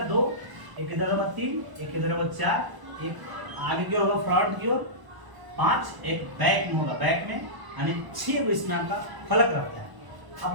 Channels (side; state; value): left; late; 1.0 ms